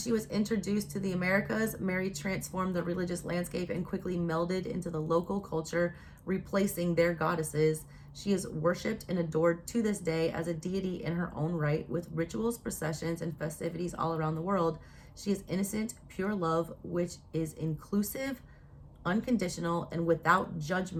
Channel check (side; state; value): both; identical; correlation 1.00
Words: was introduced to the Americas, Mary transformed the religious landscape and quickly melded into the local culture, replacing their goddesses. She is worshipped and adored to this day as a deity in her own right, with rituals, processions, and festivities all around the world. She is innocent, pure love, which is inclusive, unconditional, and without